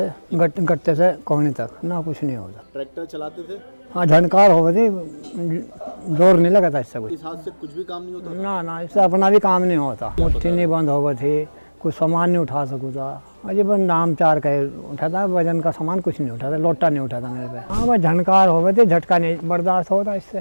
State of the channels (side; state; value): both; inverted; correlation -1.00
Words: गट्टे से कोहनी तक ना कुछ नहीं होता। ट्रैक्टर चलाते थे, हाँ झनकार हो गई, जोर नहीं लगा था इससे कुछ। इस हाथ से कुछ भी काम नहीं होता। ना इससे अपना भी काम नहीं होता। मुट्ठी नहीं बंद हो गई थी, कुछ सामान नहीं उठा सकूँ था। अजी बस नाम चार का उठाता, वजन का सामान कुछ नहीं उठाता, लोटा नहीं उठाता मेरे पे। हाँ बस झनकार हो गए थे, झटका नहीं बर्दाश्त होता